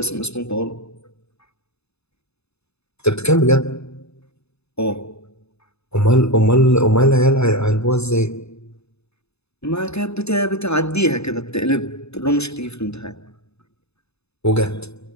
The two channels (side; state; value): right; late; 0.80 ms